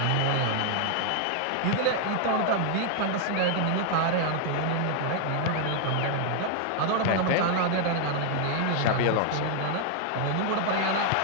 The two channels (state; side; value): different; both; correlation 0.00